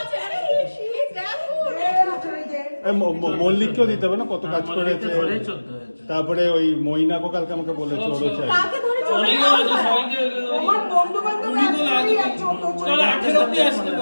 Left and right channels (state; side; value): inverted; both; correlation -1.00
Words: আরে শীত দেখো। মল্লিককেও দিতে হবে না কত কাজ করেছে ধরেই চলতে হয়েছে তারপরে ওই মইনাকো কালকে আমাকে বলেছে ওরও চাই কাকে ধরেছো? অনেকে আছে সবাইকে আমার বন্ধু বান্ধব কুড়ি তো লাগে চল 18 অবধি আসতে